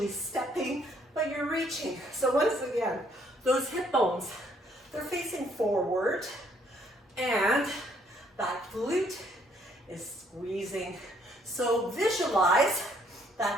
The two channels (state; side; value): normal; both; correlation 0.66